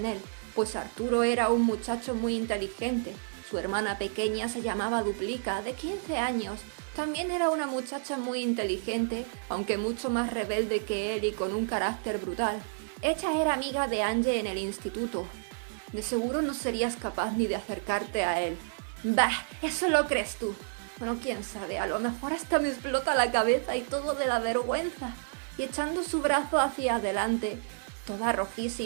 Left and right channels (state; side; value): silent; left; 56 dB below the other